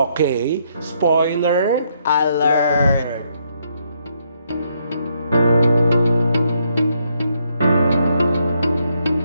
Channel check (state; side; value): inverted; both; correlation -0.74